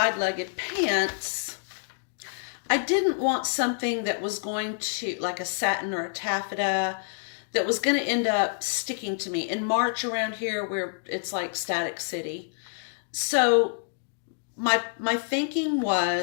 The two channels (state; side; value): silent; right; digital silence